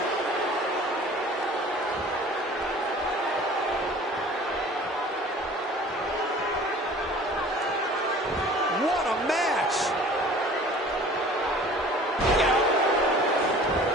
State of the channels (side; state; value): both; normal; correlation 0.47